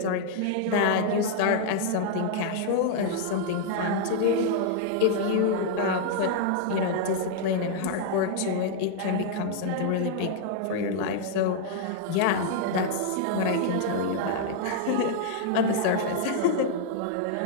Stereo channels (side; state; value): both; different; correlation 0.00